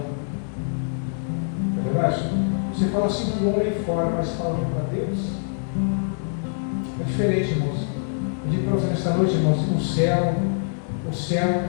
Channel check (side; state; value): right; silent; digital silence